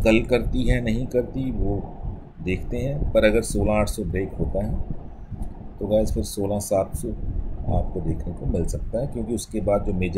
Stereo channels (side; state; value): both; identical; correlation 1.00